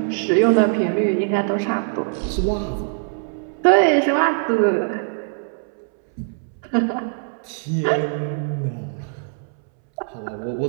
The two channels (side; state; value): left; silent; 64 dB below the other